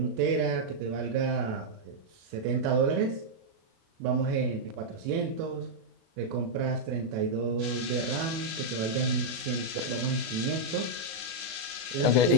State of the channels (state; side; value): late; left; 36 ms